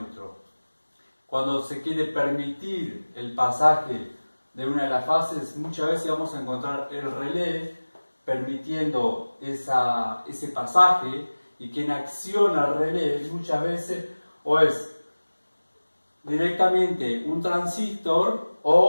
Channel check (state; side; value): inverted; both; correlation -1.00